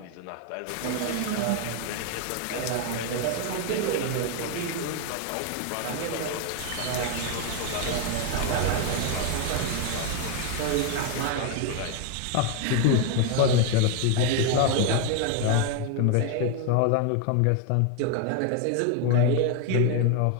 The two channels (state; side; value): different; both; correlation 0.01